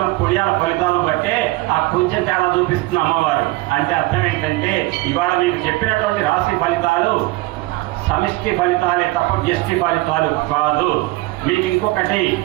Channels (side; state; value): left; quieter; 20.6 dB